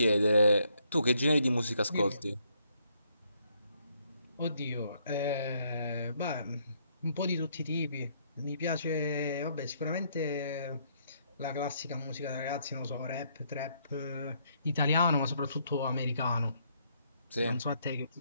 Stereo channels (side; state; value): both; inverted; correlation -0.71